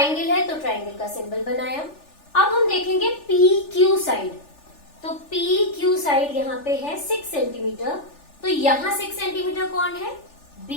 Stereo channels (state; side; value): late; right; 3.4 ms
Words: है तो ट्राइंगल का सिंबल बनाया। अब हम देखेंगे PQ साइड, तो PQ साइड यहाँ पे है 6 सेंटीमीटर, तो यहाँ 6 सेंटीमीटर कौन है?